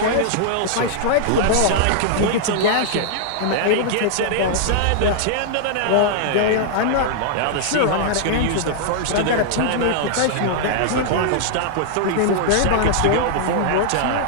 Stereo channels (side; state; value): both; different; correlation -0.01